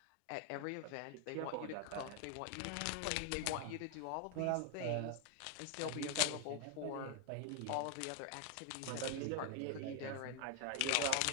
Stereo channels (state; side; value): different; both; correlation 0.01